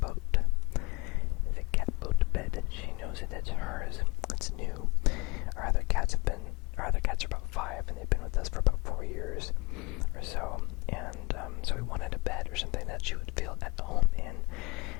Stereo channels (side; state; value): right; quieter; 25.2 dB